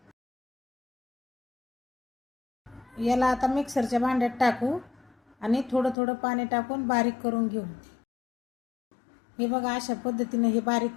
याला आता मिक्सरच्या भांड्यात टाकू आणि थोडं थोडं पाणी टाकून बारीक करून घेऊ. हे बघा, अशा पद्धतीने हे बारीक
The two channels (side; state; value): right; drops out; at 6.0 s